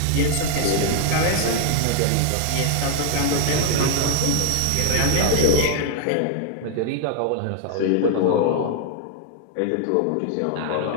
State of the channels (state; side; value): different; both; correlation 0.00